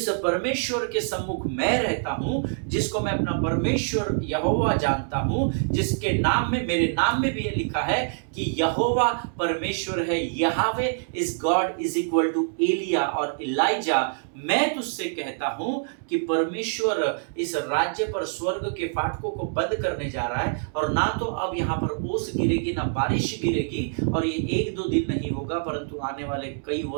परमेश्वर के सम्मुख मैं रहता हूं, जिसको मैं अपना परमेश्वर यहोवा जानता हूं, जिसके नाम में, मेरे नाम में भी ये लिखा है कि यहोवा परमेश्वर है, Yahweh is God is equal to एलिया और इलाइजा। मैं तुझसे कहता हूं कि परमेश्वर इस राज्य पर, स्वर्ग के फाटकों फाटकों को बंद करने जा रहा है, और ना तो अब यहाँ पर ओस गिरेगी ना बारिश गिरेगी, और ये 1-2 दिन नहीं होगा परंतु आने वाले कई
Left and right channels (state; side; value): silent; left; digital silence